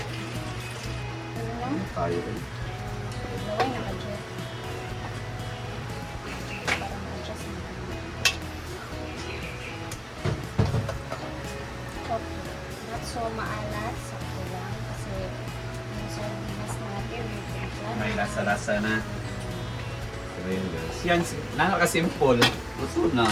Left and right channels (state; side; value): identical; both; correlation 1.00